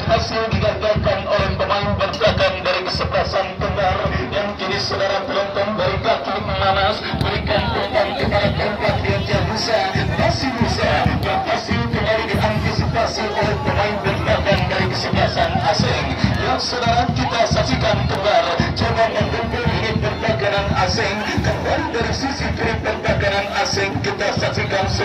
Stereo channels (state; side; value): identical; both; correlation 1.00